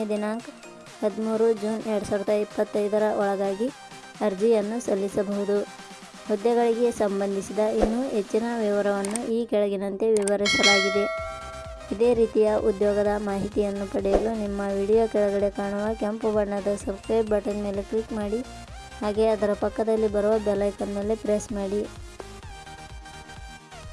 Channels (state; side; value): identical; both; correlation 1.00